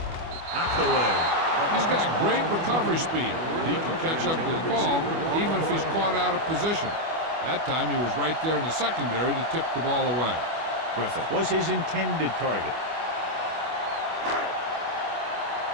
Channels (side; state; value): left; late; 25 ms